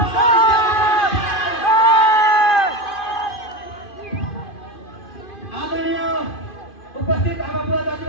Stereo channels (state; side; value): late; right; 2.5 ms